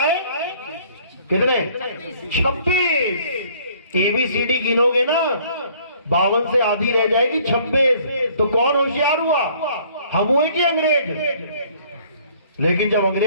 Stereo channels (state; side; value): inverted; both; correlation -0.58